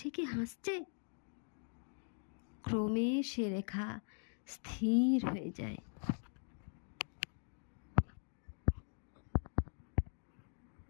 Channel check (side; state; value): right; silent; 50 dB below the other